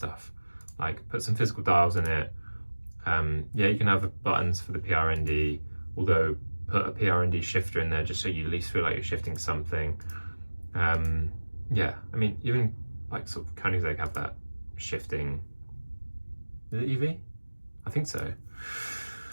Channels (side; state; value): both; inverted; correlation -1.00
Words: Like, put some physical dials in it. Yeah, you can have buttons for the PRND, although put a PRND shifter in there just so you at least feel like you're shifting something. Yeah, I mean, even like sort of Koenigsegg have that shifting. Is it EV? I think so.